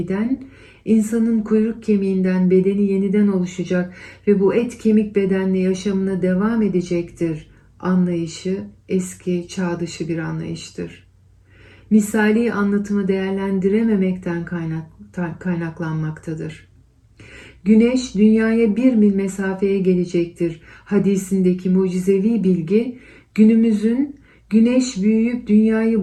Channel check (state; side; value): identical; both; correlation 1.00